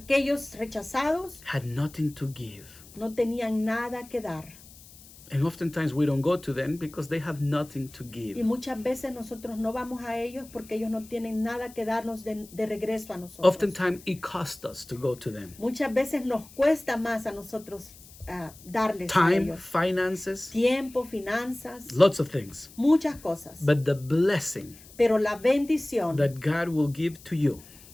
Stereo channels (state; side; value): noise; left; hiss, 21 dB below the sound